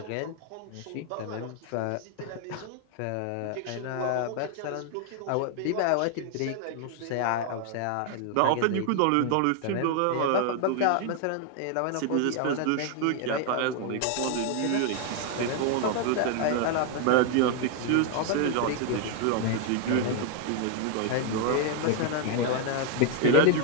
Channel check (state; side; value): different; both; correlation 0.00